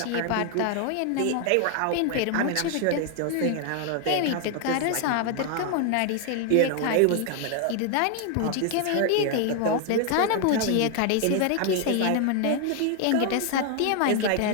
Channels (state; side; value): different; both; correlation 0.00